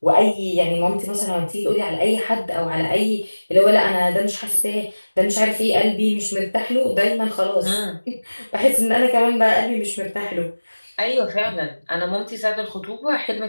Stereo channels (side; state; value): both; inverted; correlation -1.00